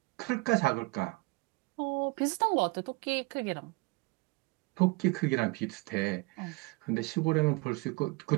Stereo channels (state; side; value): quieter; left; 26.2 dB